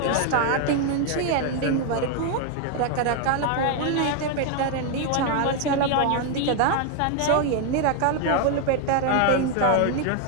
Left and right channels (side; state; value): both; different; correlation 0.01